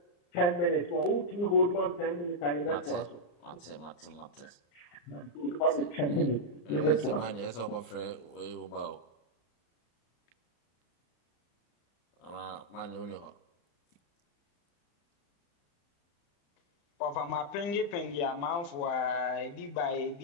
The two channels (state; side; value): late; right; 34 ms